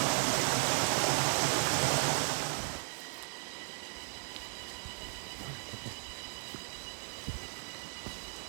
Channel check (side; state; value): left; silent; 54 dB below the other